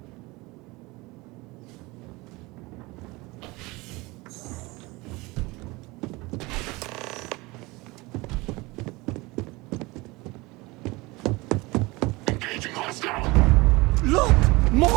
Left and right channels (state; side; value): quieter; left; 23.1 dB